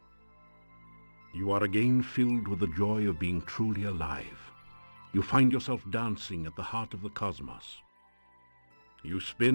You are again filled with the joy of being truly alive. You find yourself dancing at the heart of the cosmos. You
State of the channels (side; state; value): both; inverted; correlation -1.00